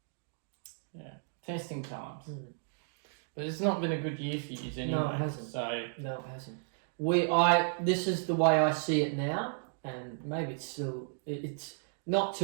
Yeah. Testing times. But it's not been a good year for you anyway. No, it hasn't. No, it hasn't. This is the way I see it now, and maybe it's not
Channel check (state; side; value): silent; left; digital silence